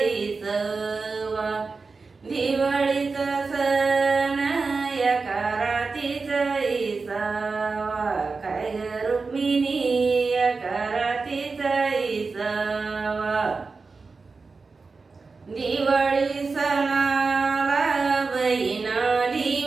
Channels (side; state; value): left; quieter; 4.3 dB